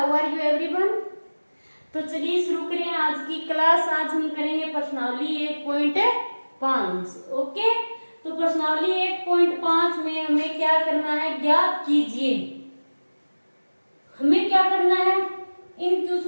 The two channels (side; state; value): both; inverted; correlation -1.00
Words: are you everyone. तो चलिए शुरू करें आज की क्लास। आज हम करेंगे प्रश्नावली 1.5। ओके, तो प्रश्नावली 1.5 में हमें क्या करना है, ज्ञात कीजिए। हमें क्या करना है, इन